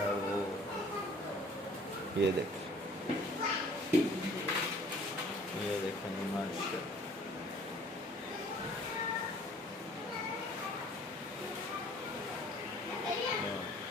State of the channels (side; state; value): both; normal; correlation 0.53